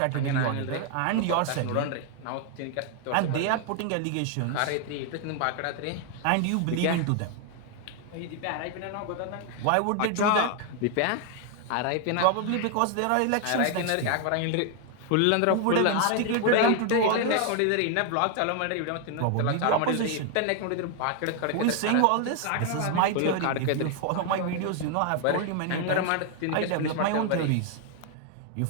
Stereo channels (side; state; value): both; different; correlation 0.00